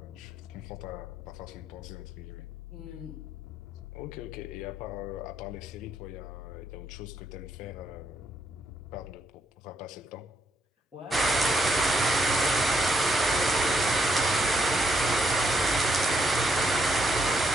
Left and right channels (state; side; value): normal; both; correlation 0.76